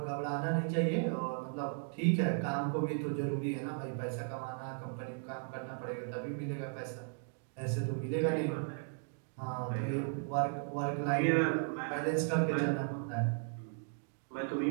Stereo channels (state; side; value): silent; left; 54 dB below the other